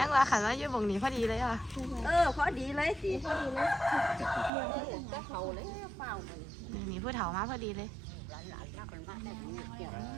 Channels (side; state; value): left; drops out; at 4.5 s